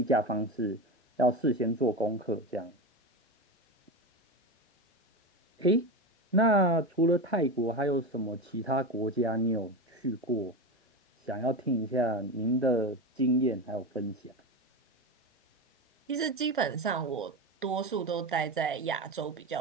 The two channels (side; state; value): both; normal; correlation 0.20